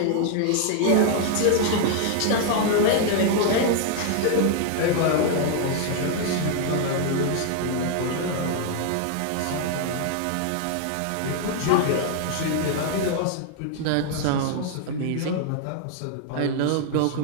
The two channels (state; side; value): different; both; correlation 0.00